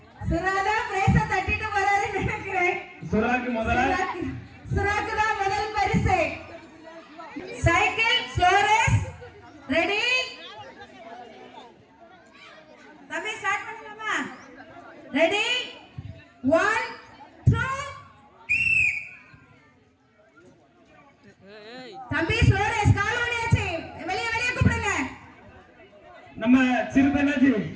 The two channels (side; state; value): both; identical; correlation 1.00